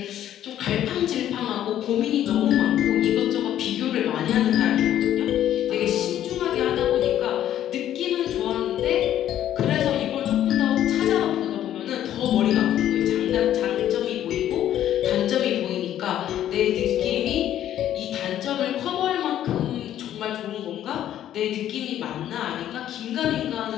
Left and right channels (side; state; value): right; quieter; 11.5 dB